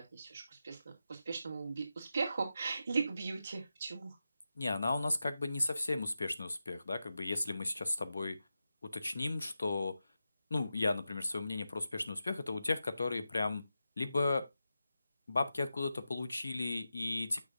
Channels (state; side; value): inverted; both; correlation -0.91